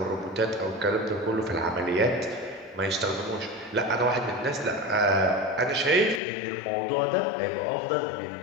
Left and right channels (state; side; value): drops out; right; at 6.2 s